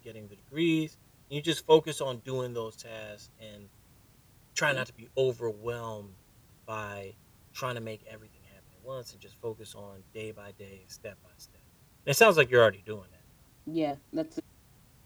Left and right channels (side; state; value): both; identical; correlation 1.00